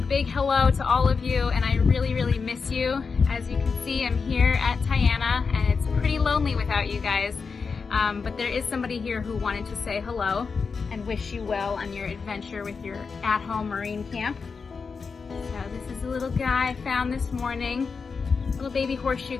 hello to all of you, and I really miss you. As you can see, I'm here at Tiana and it's pretty lonely without you guys, but there is somebody here who wanted to say hello and wish you well on your adventure with your at-home marine camp. So this is a little guy I found this morning, little baby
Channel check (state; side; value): quieter; right; 5.1 dB